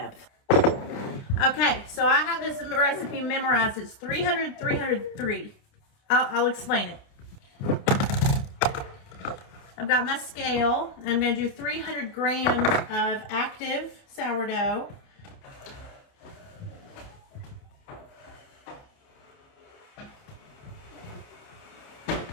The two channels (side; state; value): right; late; 29 ms